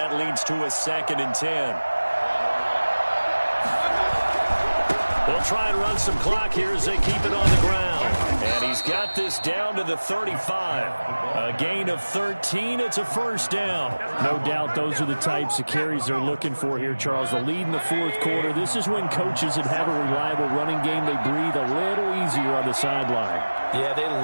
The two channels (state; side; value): inverted; both; correlation -1.00